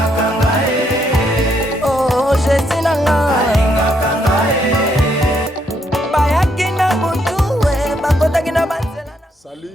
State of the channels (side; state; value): both; normal; correlation 0.74